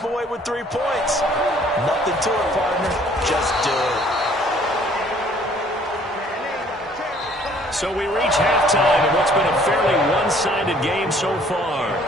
away with 3 points. Nothing to it, partner. Just do it. So we reach halftime in what's been a fairly one-sided game so far.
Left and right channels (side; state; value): both; normal; correlation 0.58